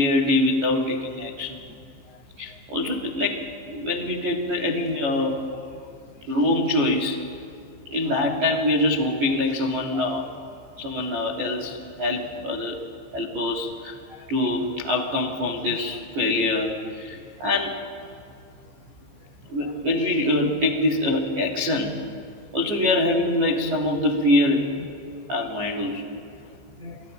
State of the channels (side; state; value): left; late; 14 ms